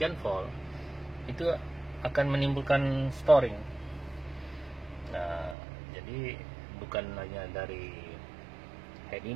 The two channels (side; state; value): left; drops out; at 5.6 s